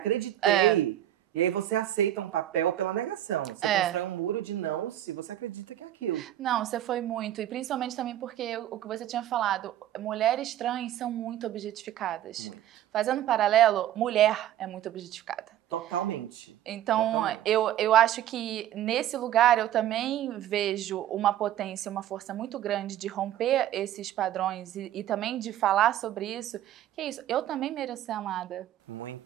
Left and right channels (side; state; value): left; quieter; 12.3 dB